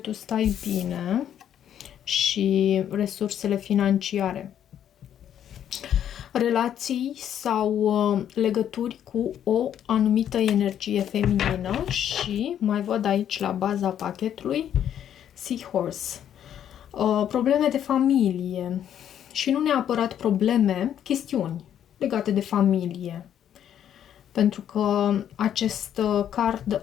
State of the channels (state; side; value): quieter; right; 9.9 dB